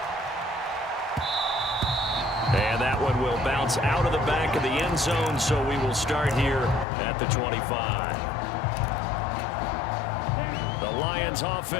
And that one will bounce out of the back of the end zone, so we will start here at the 25. The Lions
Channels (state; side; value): drops out; right; at 6.9 s